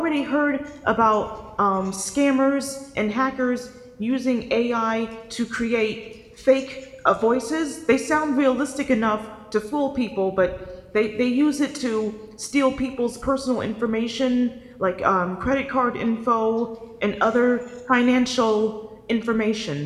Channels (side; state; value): both; identical; correlation 1.00